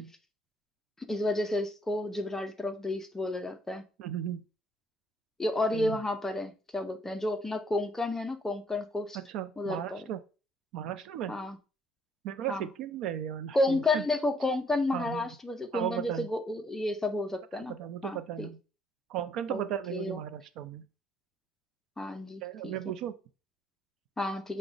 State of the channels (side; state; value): both; normal; correlation 0.66